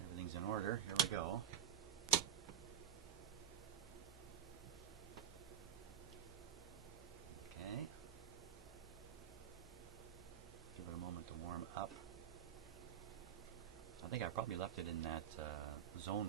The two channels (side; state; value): left; quieter; 9.9 dB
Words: Everything's in order. Here we go. Okay. Give it a moment to warm up. I think I probably left it in that